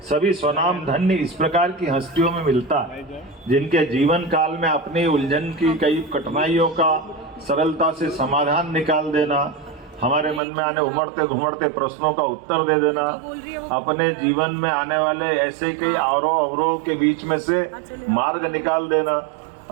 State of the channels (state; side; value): drops out; left; at 10.4 s